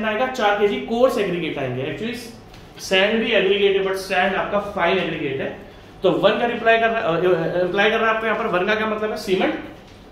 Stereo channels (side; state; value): both; identical; correlation 1.00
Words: आएगा, 4 kg कोर्स एग्रीगेट आएंगे। एक्चुअली सैंड भी एग्रीगेट है, बट सैंड आपका फाइन एग्रीगेट है। तो 1 का रिप्लाई कर रहा है आपको यहाँ पर। 1 का क्या मतलब है, सीमेंट।